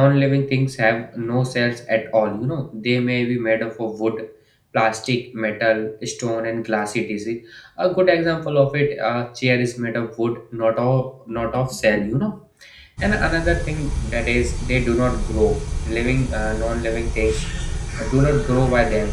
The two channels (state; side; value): identical; both; correlation 1.00